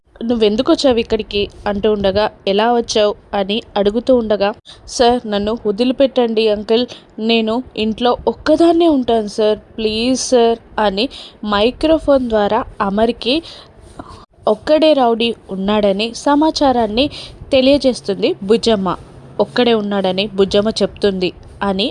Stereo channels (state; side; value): identical; both; correlation 1.00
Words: నువ్వెందుకు వచ్చావు ఇక్కడికి అంటూ ఉండగా, ఎలా వచ్చావు అని అడుగుతూ ఉండగా, సార్ నన్ను వదిలిపెట్టండి అంకుల్, నేను ఇంట్లో ఒక్కదాన్నే ఉంటాను సార్, ప్లీజ్ సార్ అని మైక్రోఫోన్ ద్వారా అమర్కి ఒక్కడే రౌడీ ఉన్నాడని సమాచారాన్ని తెలియజేస్తుంది బుజ్జమ్మ. ఒక్కడే ఉన్నాడని బుజ్జమ్మ చెప్తుంది అని